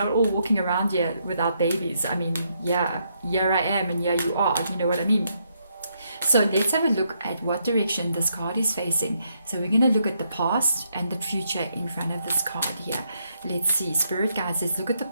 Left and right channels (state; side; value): inverted; both; correlation -0.76